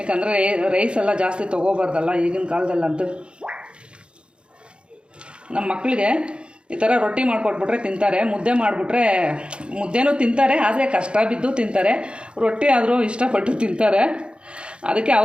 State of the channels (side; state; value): left; late; 0.055 ms